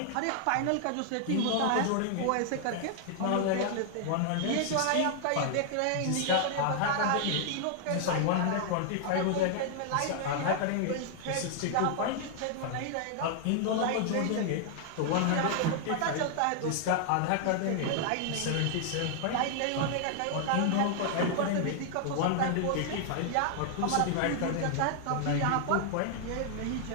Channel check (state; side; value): different; both; correlation 0.00